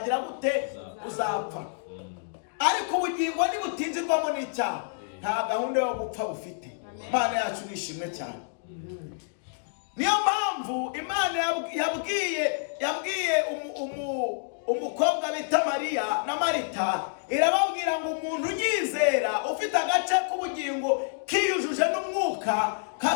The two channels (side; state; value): right; silent; digital silence